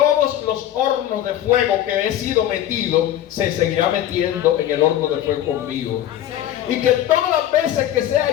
los hornos de fuego que he sido metido, se seguirá metiendo en el horno de fuego conmigo. Y que todas las veces que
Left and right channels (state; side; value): quieter; right; 11.9 dB